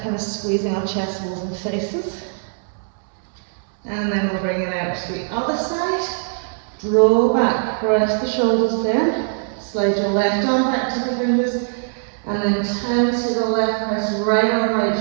kind of squeezing our chest walls and faces. And then we'll bring it out to the other side. Draw back, press the shoulders down. Slide your left arm back to the fingers. And then turn to the left, press right arm,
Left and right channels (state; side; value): silent; left; 65 dB below the other